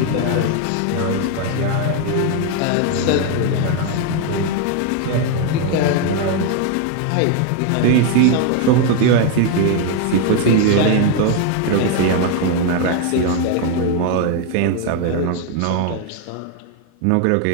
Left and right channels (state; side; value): different; both; correlation 0.01